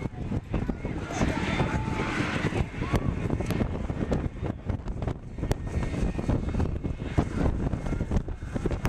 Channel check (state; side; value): identical; both; correlation 1.00